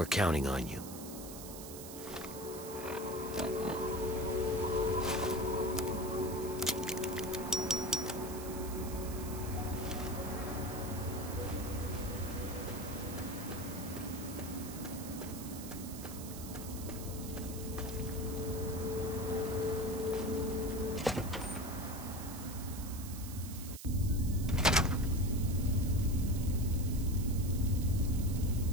counting on you.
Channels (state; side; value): noise; right; hiss, 12 dB below the sound